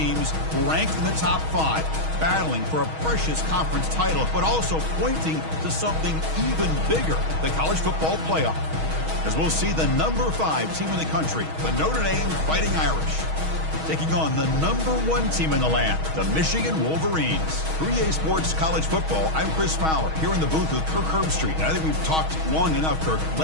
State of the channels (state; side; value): late; left; 6.3 ms